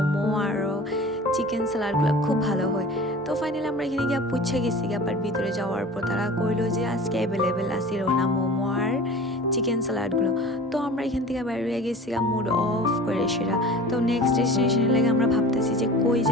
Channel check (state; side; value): normal; both; correlation 0.40